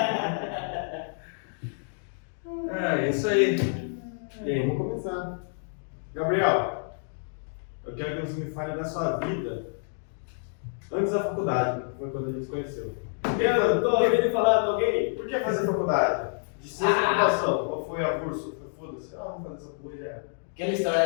É isso aí. E aí, vamos começar. Gabriel, eu quero que você me fale da sua vida antes da faculdade, que foi quando a gente se conheceu. Eu tô ouvindo falar de alguém? Por que fazer faculdade? De ciência da computação. Qual foi a curso? Foda-se, vamos fazer essa porra já era. Aquela história,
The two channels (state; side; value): silent; right; digital silence